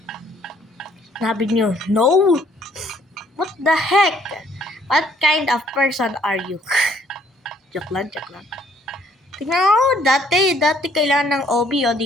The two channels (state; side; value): normal; both; correlation 0.64